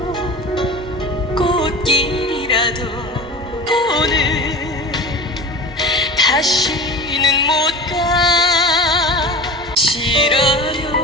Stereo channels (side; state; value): both; normal; correlation 0.34